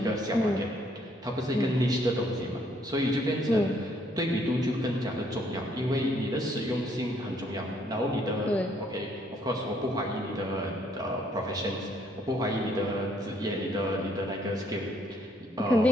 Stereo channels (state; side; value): normal; both; correlation 0.67